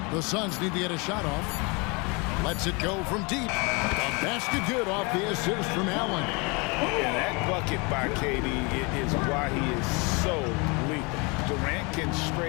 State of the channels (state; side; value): quieter; right; 29.4 dB